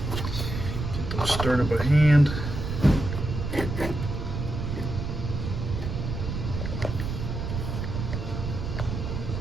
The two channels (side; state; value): right; noise; rumble, 4 dB below the sound